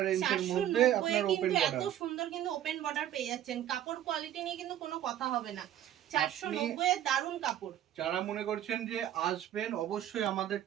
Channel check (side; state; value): left; quieter; 11.5 dB